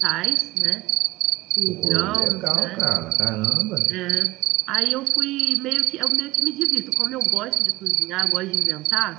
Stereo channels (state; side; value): quieter; left; 18.6 dB